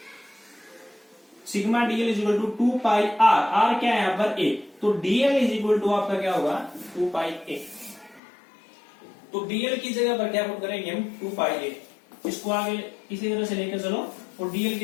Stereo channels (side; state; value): right; drops out; at 8.2 s